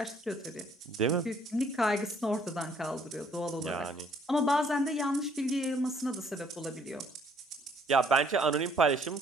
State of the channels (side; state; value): both; normal; correlation 0.63